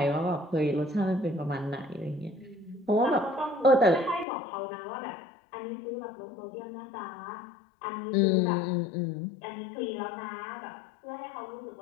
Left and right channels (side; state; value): right; drops out; at 4.2 s